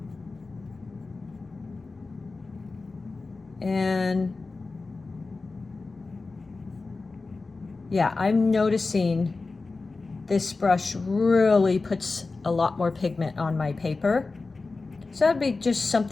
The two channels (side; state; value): right; quieter; 3.8 dB